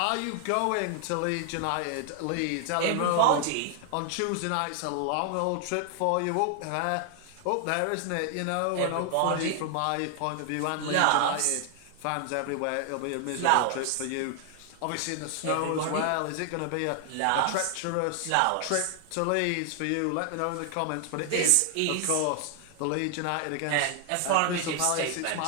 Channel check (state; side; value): different; both; correlation 0.00